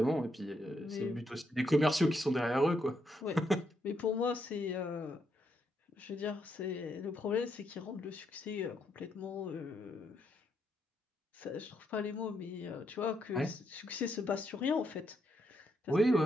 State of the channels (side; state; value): both; normal; correlation 0.78